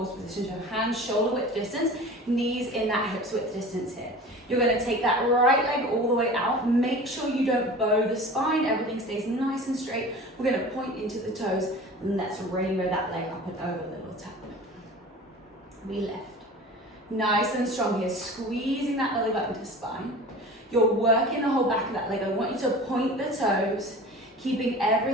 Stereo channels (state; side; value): normal; both; correlation 0.38